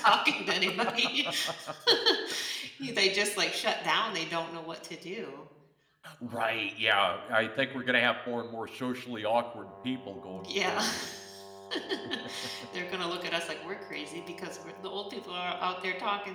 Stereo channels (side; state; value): both; identical; correlation 1.00